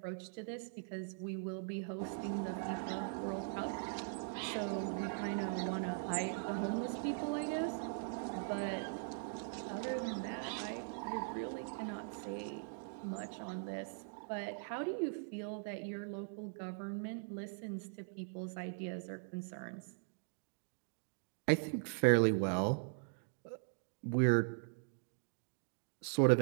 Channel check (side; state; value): left; silent; digital silence